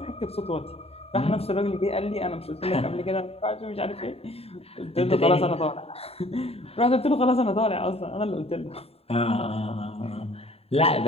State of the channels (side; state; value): right; late; 0.29 ms